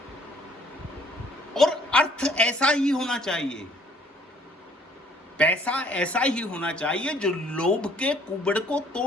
और अर्थ ऐसा ही होना चाहिए, पैसा ऐसा ही होना चाहिए जो लोभ के कुबड़ को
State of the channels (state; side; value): normal; both; correlation 0.60